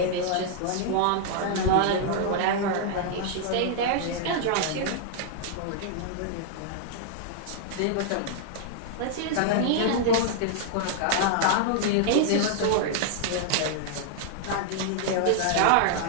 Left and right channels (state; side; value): different; both; correlation -0.01